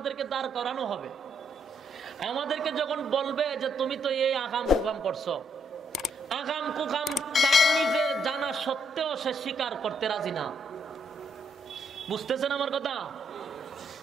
দাঁড় করানো হবে, আমাদেরকে যখন বলবে যে তুমি তো এই আকাম কুকাম করছো, আকাম কুকাম তার নিজে জানা সত্ত্বেও সে স্বীকার করতে রাজি না। বুঝতেছেন আমার কথা?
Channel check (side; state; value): both; normal; correlation 0.74